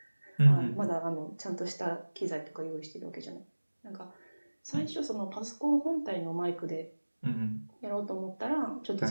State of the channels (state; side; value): inverted; both; correlation -1.00